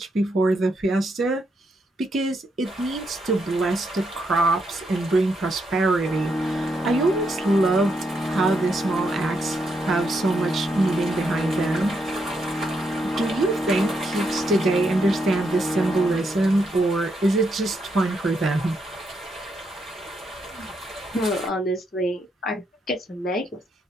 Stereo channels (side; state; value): both; normal; correlation 0.79